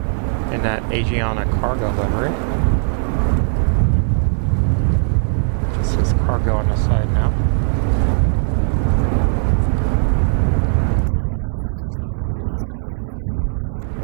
in that Asiana cargo livery. Just says cargo on the side now.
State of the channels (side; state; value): left; silent; digital silence